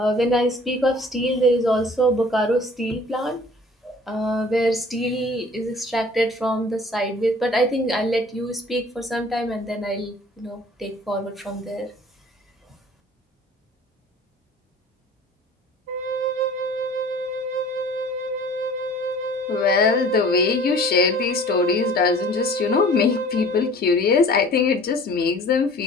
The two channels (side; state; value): both; normal; correlation 0.48